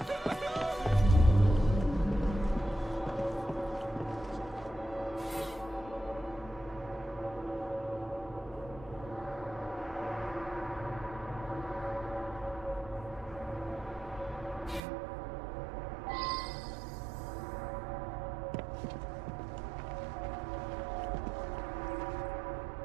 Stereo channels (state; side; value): drops out; left; at 14.8 s